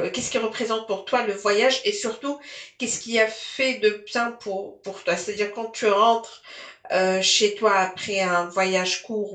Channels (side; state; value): both; identical; correlation 1.00